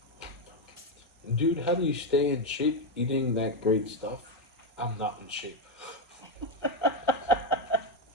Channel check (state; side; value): normal; both; correlation 0.06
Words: Dude, how do you stay in shape eating that great stuff? I'm not in shape.